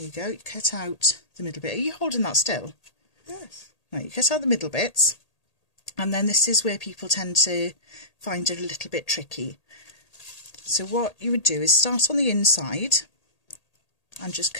you go, you cut out the middle bit. Are you holding that still? Yes. Right, you cut out the middle bits, and then this is where people tend to find it a little bit tricky. So what you would do is start on the inside and just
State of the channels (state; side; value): late; right; 1.8 ms